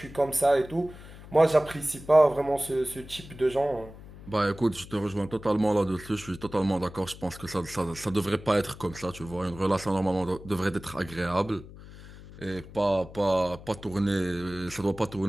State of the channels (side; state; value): left; noise; hum, 17 dB below the sound